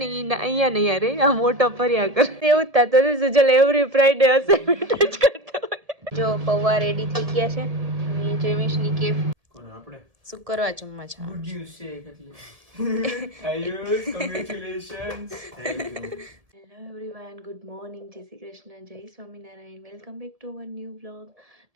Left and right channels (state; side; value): late; left; 1.7 ms